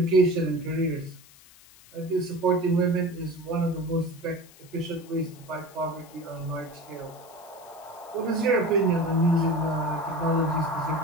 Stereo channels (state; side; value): noise; left; hiss, 23 dB below the sound